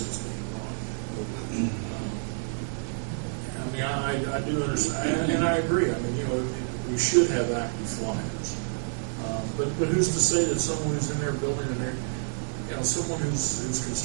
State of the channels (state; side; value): silent; left; 59 dB below the other